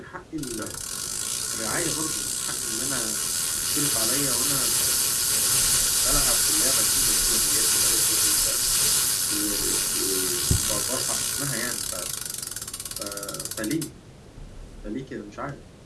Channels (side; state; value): both; identical; correlation 1.00